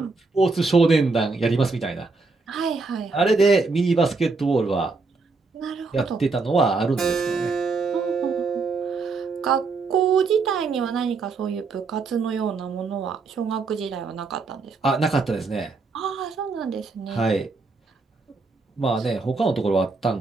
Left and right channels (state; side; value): quieter; left; 4.1 dB